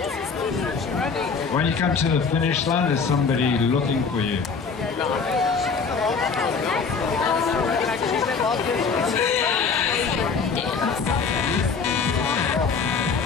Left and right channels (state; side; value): quieter; right; 5.2 dB